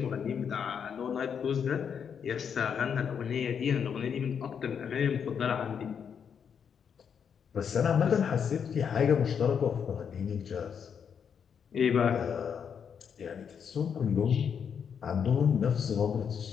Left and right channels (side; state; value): right; quieter; 7.3 dB